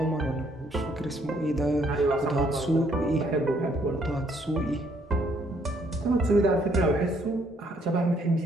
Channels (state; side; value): normal; both; correlation 0.67